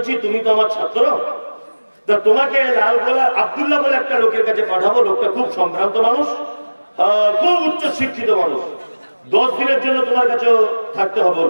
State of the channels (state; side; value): inverted; both; correlation -1.00